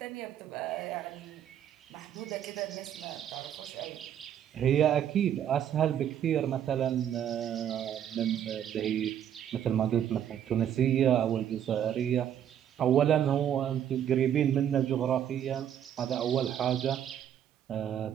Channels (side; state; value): left; quieter; 9.9 dB